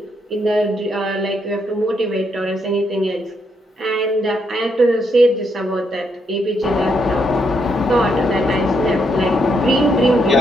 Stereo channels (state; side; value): normal; both; correlation 0.77